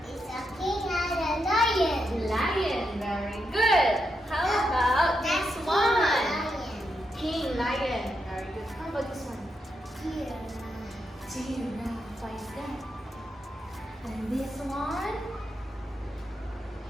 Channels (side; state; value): both; normal; correlation 0.84